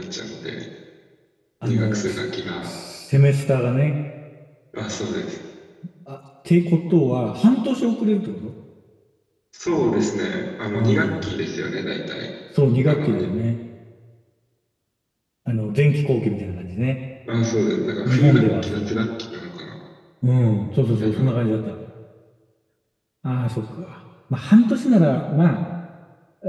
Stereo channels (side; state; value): both; identical; correlation 1.00